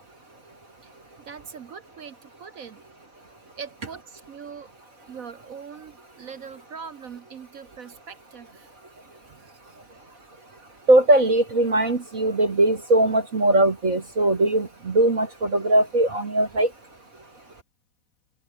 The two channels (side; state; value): left; late; 4.1 ms